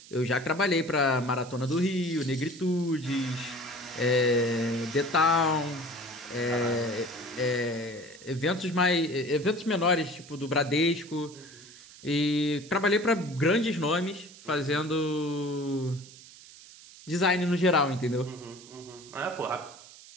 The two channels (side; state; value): right; noise; hiss, 19 dB below the sound